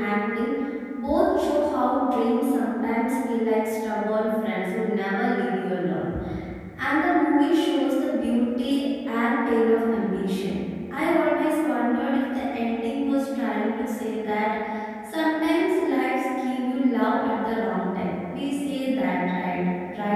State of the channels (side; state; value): both; identical; correlation 1.00